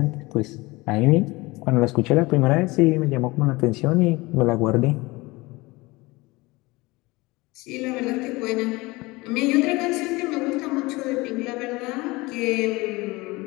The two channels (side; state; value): right; quieter; 22.4 dB